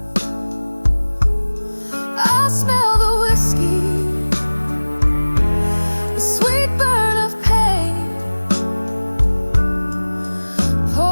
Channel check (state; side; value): inverted; both; correlation -1.00